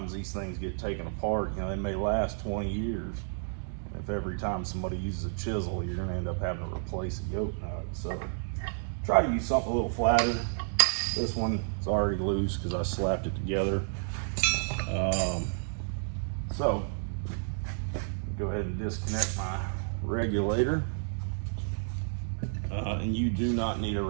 these things get taken apart. They may last 20 years. If every time somebody uses a chisel, you're going to end up having to replace a yoke nut. So try to use something a little flatter. This one is already loose because I slapped it together. So go ahead and disconnect my regulator. And you do not need a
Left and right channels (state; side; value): silent; left; digital silence